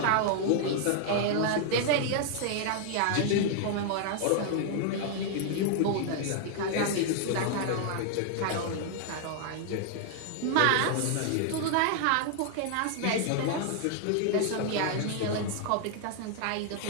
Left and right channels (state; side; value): different; both; correlation 0.00